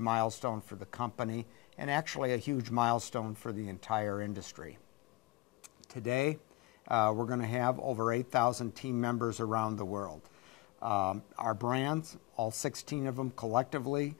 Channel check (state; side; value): quieter; right; 20.3 dB